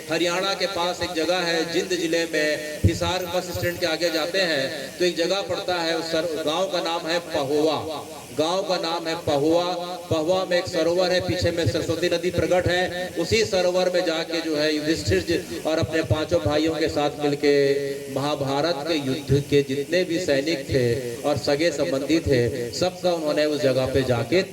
हरियाणा के पास एक जगह है जिंद जिले में, हिसार बस स्टैंड के आगे जाते हैं तो एक जगह पड़ता है, उस गांव का नाम है पहुआ। गांव का नाम है पहुआ। पहुआ में एक सरोवर है, पीछे में सरस्वती नदी प्रकट है। उसी सरोवर में जाके जो है युधिष्ठिर जी और अपने 5 भाइयों के साथ मिलके महाभारत के युद्ध के जितने भी सैनिक थे और सगे संबंधी थे, सबका उन्होंने उस जगह पे जाके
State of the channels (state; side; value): identical; both; correlation 1.00